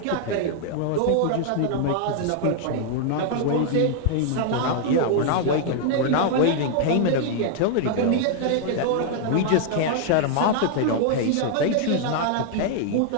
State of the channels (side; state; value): both; different; correlation 0.00